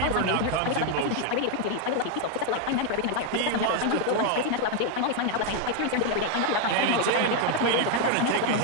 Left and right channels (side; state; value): both; different; correlation 0.00